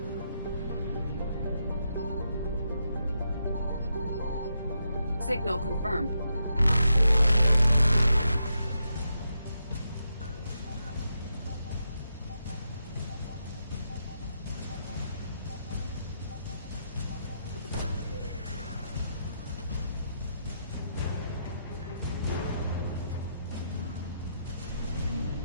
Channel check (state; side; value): inverted; both; correlation -0.82